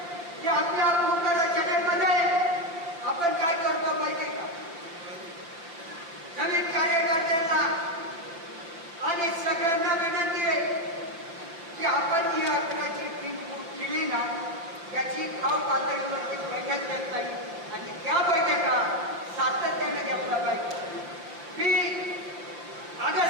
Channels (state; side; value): late; left; 5.9 ms